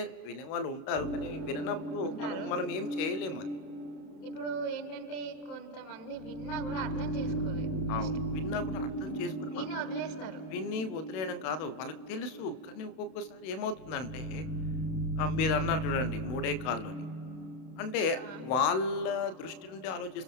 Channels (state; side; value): late; right; 31 ms